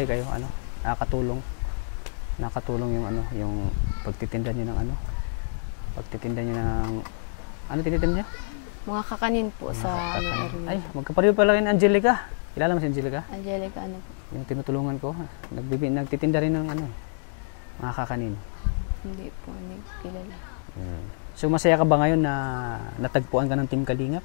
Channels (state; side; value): silent; right; 57 dB below the other